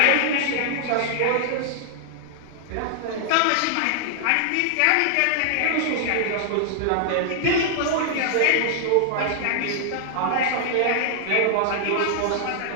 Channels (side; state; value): both; different; correlation -0.01